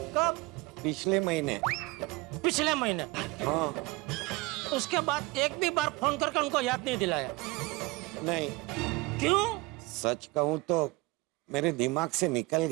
पिछले महीने। पिछले महीने? हाँ। उसके बाद एक भी बार फोन करके उनको याद नहीं दिलाया? नहीं। क्यों? सच कहूँ तो मेरे दिमाग से निकल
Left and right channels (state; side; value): quieter; left; 23.4 dB